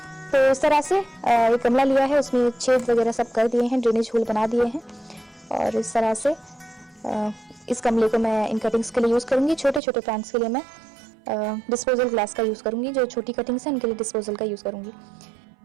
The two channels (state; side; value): drops out; left; at 9.8 s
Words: तो इस तरह से एक गमला लिया है, उसमें छेद वगैरह सब कर दिए हैं, ड्रेनेज होल बना दिए हैं। और इस तरह से इस गमले को मैं इन कटिंग्स के लिए यूज़ करूँगी। छोटे छोटे प्लांट्स के लिए मैं डिस्पोजल ग्लास का यूज़ करूँगी। जो छोटी कटिंग्स हैं उनके लिए डिस्पोजल का यूज़ करूँगी।